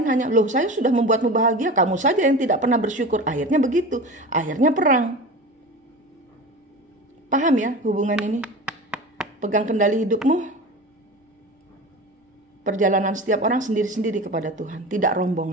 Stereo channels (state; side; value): normal; both; correlation 0.32